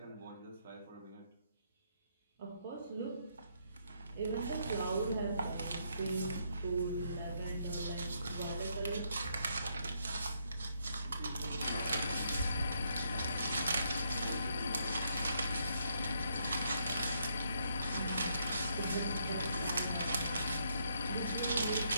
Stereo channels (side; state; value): both; inverted; correlation -0.74